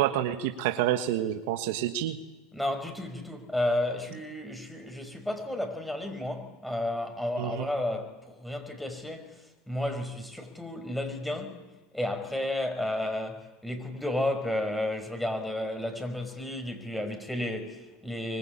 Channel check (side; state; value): both; normal; correlation 0.57